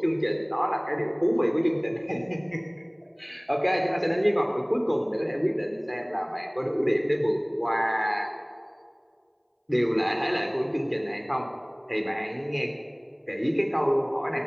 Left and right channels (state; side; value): identical; both; correlation 1.00